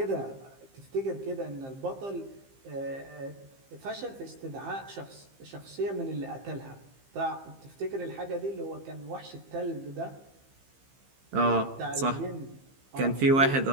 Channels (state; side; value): late; left; 15 ms